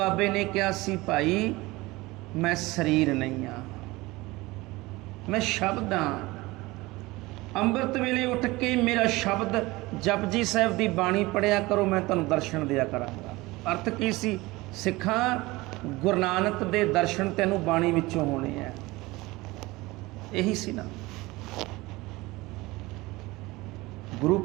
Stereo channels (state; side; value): quieter; left; 21.0 dB